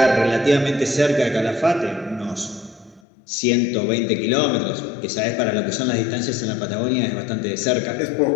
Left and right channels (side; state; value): right; drops out; at 3.0 s